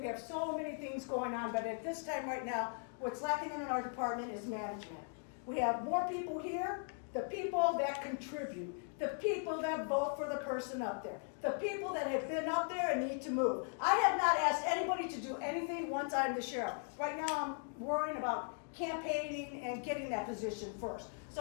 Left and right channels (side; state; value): right; silent; 52 dB below the other